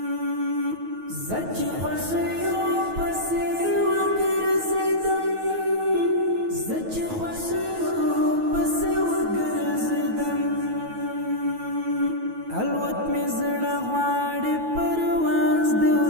زچ خوشیو پسې وګرځېدم زچ خوشیو پسې وګرځېدم الوت مې زړه غواړي پرواز دی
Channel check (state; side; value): late; left; 9.3 ms